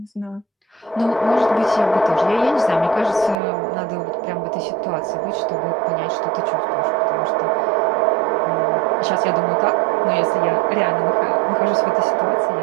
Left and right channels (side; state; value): left; drops out; at 3.4 s